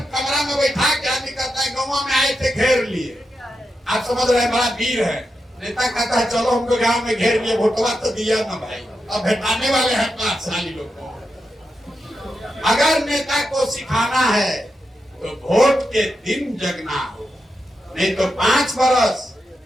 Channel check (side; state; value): both; normal; correlation 0.87